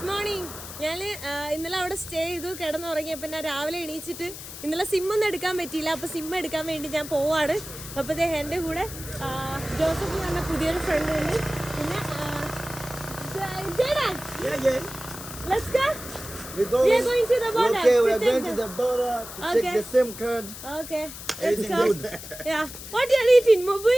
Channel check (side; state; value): left; noise; hiss, 12 dB below the sound